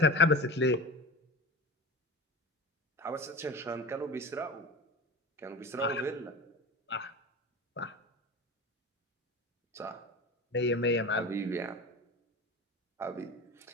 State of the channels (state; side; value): normal; both; correlation 0.31